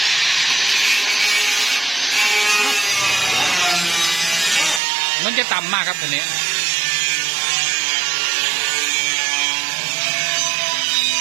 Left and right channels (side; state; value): left; drops out; at 4.8 s